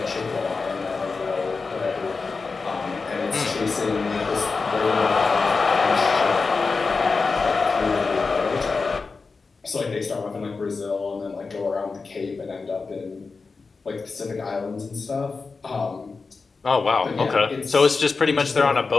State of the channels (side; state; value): right; quieter; 4.4 dB